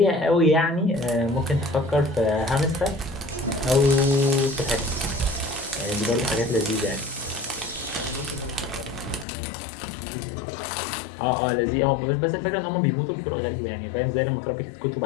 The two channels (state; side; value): drops out; right; at 9.2 s